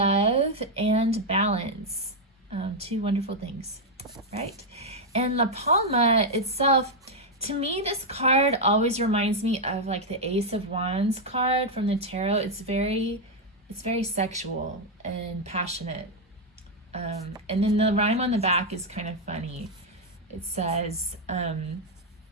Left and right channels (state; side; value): normal; both; correlation 0.01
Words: and balance. Two wonderful things, right? And La Palma itself, to me, this card always reminds me of like the Ace of Wands card from the tarot. It's very sexual and passionate. And then the rhyme on the back is kind of funny. It says,